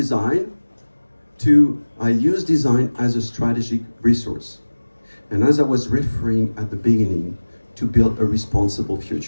to I use design as a strategic resource. And as I was referring at the beginning, to build a responsible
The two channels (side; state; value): both; inverted; correlation -1.00